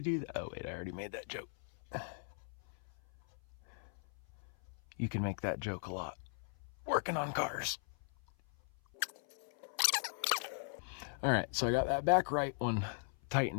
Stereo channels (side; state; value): right; silent; 52 dB below the other